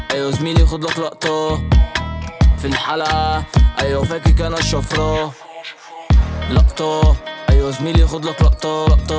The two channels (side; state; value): both; identical; correlation 1.00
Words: أيوة زميلي خد لك لقطة. في الحلقة أيوة فاكك أنا الشفرة. لقطة. أيوة زميلي خد لك لقطة